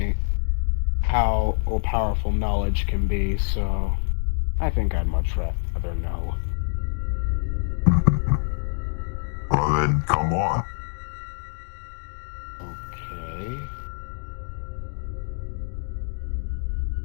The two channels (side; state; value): right; silent; digital silence